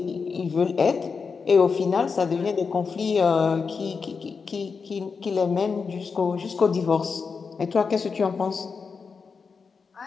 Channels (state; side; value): quieter; right; 5.3 dB